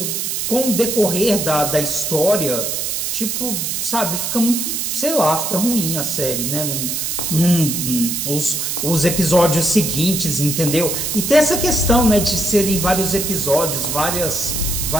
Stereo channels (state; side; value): noise; right; hiss, 2 dB below the sound